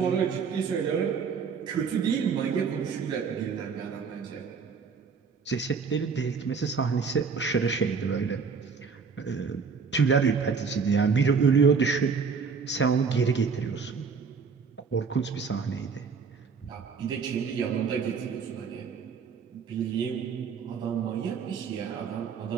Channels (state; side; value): quieter; left; 5.6 dB